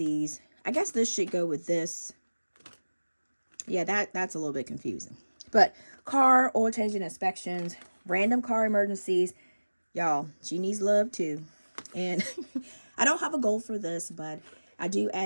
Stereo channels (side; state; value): both; inverted; correlation -1.00